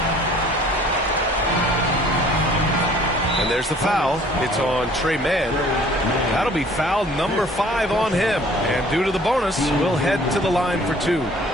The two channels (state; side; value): normal; both; correlation 0.54